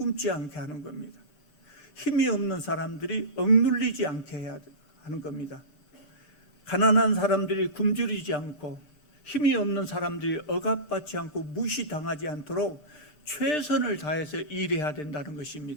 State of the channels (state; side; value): late; right; 7.4 ms